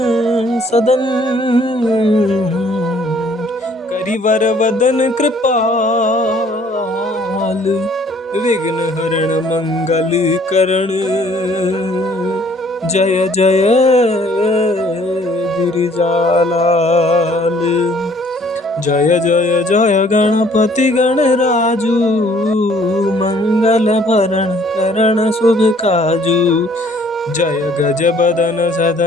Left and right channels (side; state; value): both; normal; correlation 0.59